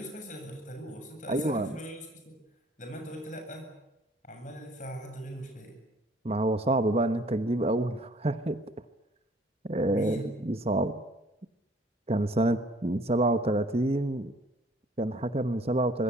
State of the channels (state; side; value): normal; both; correlation 0.56